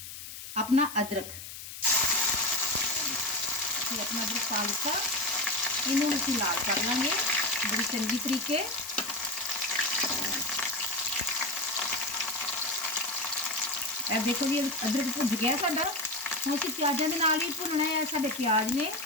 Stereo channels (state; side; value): noise; left; hiss, 11 dB below the sound